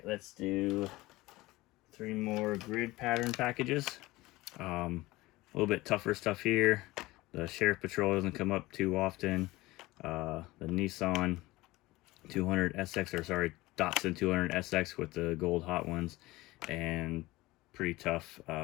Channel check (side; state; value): right; quieter; 19.6 dB